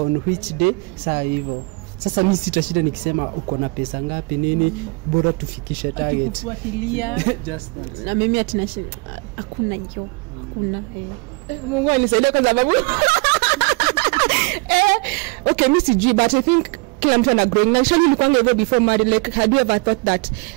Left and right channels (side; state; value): left; quieter; 28.7 dB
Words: which day, saa hivyo. Sasa mimi sitashinda nikisema uko na pesa ngapi nini, bora tufikishe target. Kufuatilia Just that. Na mimi atinashinda hakuna hiyo. Kuna Mungu anisaidie kwa sababu okay, mimi sijui, but I think kila mtu ana growing. Na Shali ulikuwa hivyo before married, like had you ever thought that